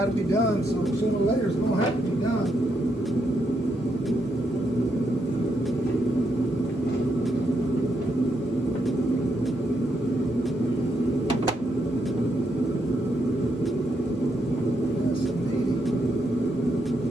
to be done, so sooner or later it's going to have to be done.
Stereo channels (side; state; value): both; normal; correlation 0.79